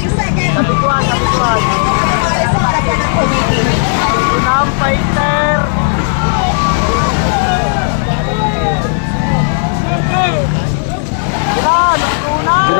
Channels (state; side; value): silent; right; digital silence